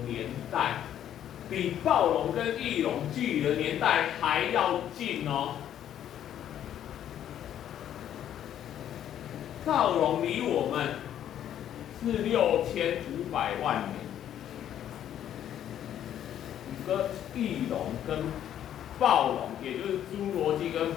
年代，比暴龙跟翼龙距离的年代还要近哦。暴龙离我们是6500万年。跟翼龙跟暴龙，也就是侏罗纪跟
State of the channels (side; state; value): right; quieter; 10.6 dB